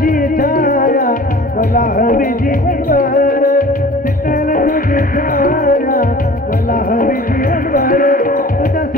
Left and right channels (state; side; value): normal; both; correlation 0.44